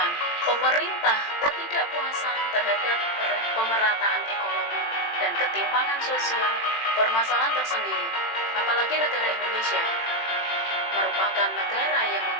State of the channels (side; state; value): right; late; 18 ms